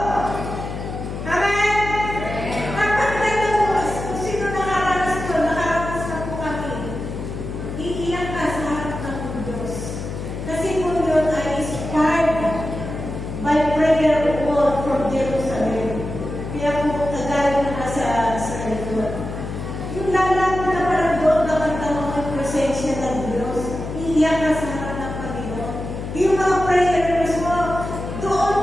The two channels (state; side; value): noise; left; hum, 7 dB below the sound